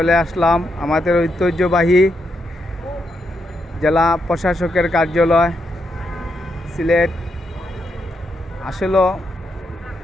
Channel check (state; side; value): normal; both; correlation 0.81